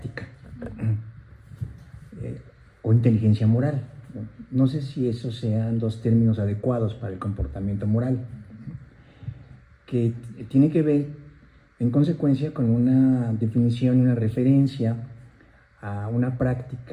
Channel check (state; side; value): identical; both; correlation 1.00